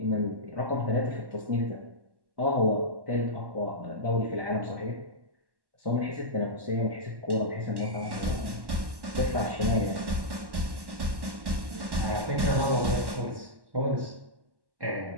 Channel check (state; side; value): late; left; 1.1 ms